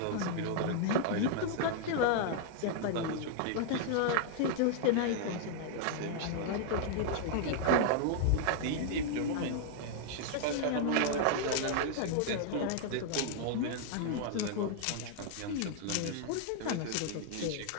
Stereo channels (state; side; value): different; both; correlation -0.01